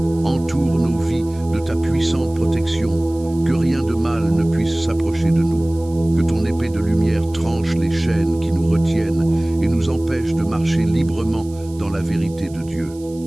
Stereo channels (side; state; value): right; noise; hiss, 24 dB below the sound